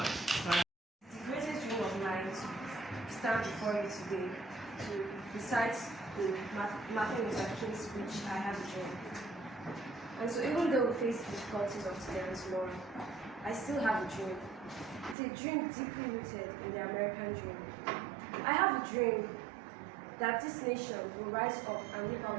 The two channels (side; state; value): left; drops out; at 15.2 s